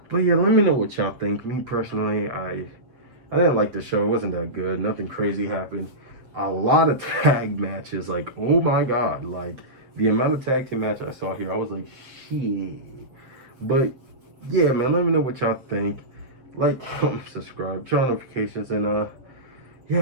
But yeah, let me know what y'all think. Me personally, I didn't like the show. It wasn't that good. Nothing crazy happened. A lot of tag matches. Like, oh my god. Like, the amount of tag team matches I saw here, I was like, shit. But yeah, man, let me know what y'all think. Like, comment, subscribe, turn on notifications, and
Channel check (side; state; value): left; late; 7.5 ms